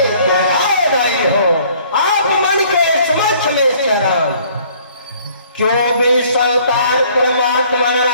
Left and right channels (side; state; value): both; inverted; correlation -0.58